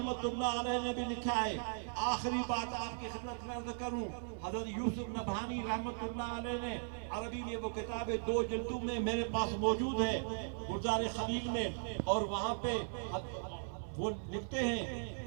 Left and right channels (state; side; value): silent; left; digital silence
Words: اللہ علیہ نے بھی لکھا ہے. آخری بات آپ کی خدمت میں عرض کروں، حضرت یوسف نبہانی رحمت اللہ علیہ نے عربی میں وہ کتاب 2 جلدوں میں میرے پاس موجود ہے گلزار خلیل میں، اور وہاں پہ وہ لکھتے ہیں